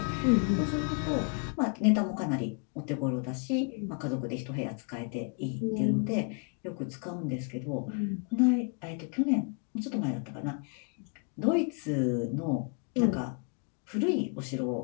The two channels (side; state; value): right; quieter; 39.2 dB